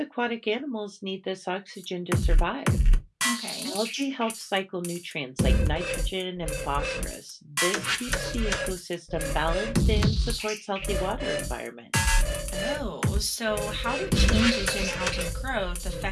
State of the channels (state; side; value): identical; both; correlation 1.00